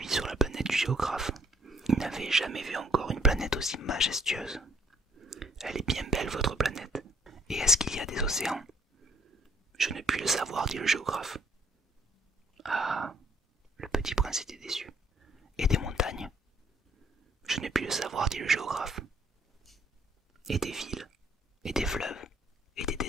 sur la planète du géographe, il n'avait jamais vu encore une planète aussi majestueuse. Elle est bien belle, votre planète. Et est-ce qu'il y a des océans? Je ne puis le savoir, dit le géographe. Ah, le petit prince était déçu. Et des montagnes? Je ne puis le savoir, dit le géographe. Et des villes, et des fleuves, et des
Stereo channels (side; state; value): both; normal; correlation 0.64